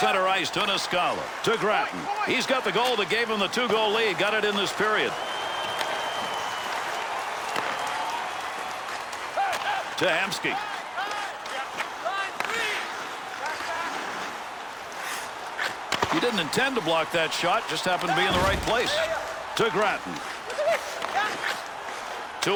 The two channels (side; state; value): both; identical; correlation 1.00